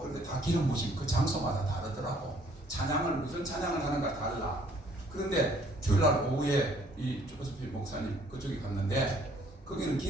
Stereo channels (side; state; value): both; normal; correlation 0.61